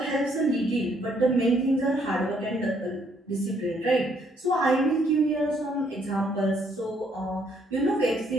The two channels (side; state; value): both; normal; correlation 0.69